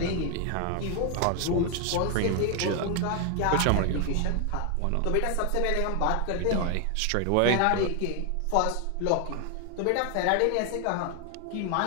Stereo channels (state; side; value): different; both; correlation 0.00